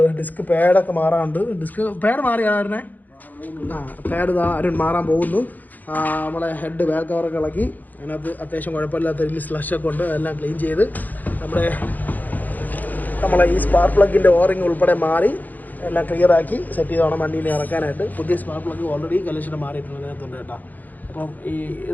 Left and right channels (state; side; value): late; right; 0.083 ms